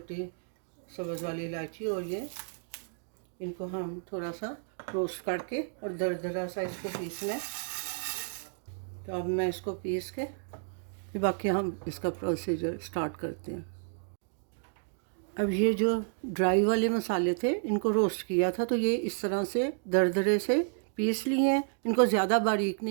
सब्ज़ वाली इलायची और ये इनको हम थोड़ा सा रोस्ट करके और दरदरा सा इसको पीसना है। तो अब मैं इसको पीस के फिर बाकी हम इसका प्रोसीजर स्टार्ट करते हैं। अब ये जो ड्राई वाले मसाले थे इनको रोस्ट किया था तो ये इस तरह से दरदरे से पीस लिए हैं। इनको ज़्यादा बारीक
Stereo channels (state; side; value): silent; left; digital silence